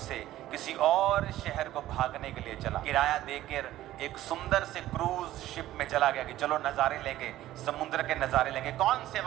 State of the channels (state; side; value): quieter; left; 14.4 dB